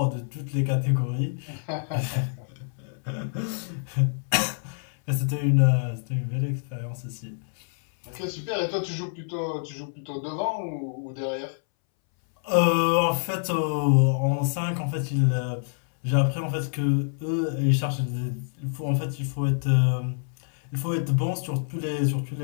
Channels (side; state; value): right; silent; 60 dB below the other